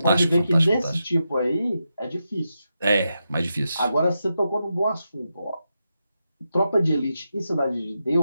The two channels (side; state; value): both; inverted; correlation -0.87